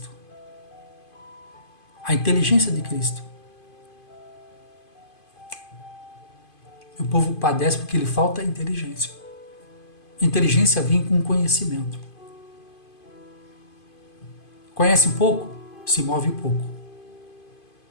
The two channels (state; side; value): late; right; 2.5 ms